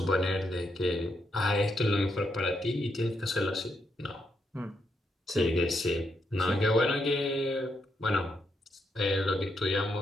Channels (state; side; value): normal; both; correlation 0.79